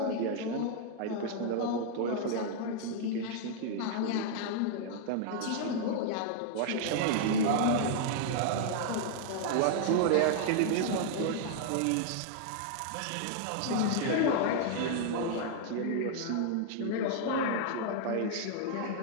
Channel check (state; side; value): different; both; correlation 0.00